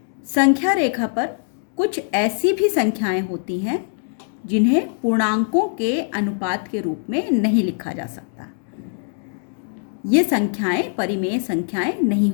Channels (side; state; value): right; silent; digital silence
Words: संख्या रेखा पर कुछ ऐसी भी संख्याएं होती हैं जिन्हें पूर्णांकों के अनुपात के रूप में नहीं लिखा जा सकता। ये संख्याएं परिमेय संख्याएं नहीं